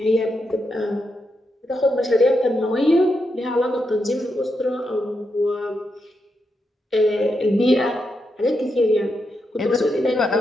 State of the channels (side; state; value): both; normal; correlation 0.84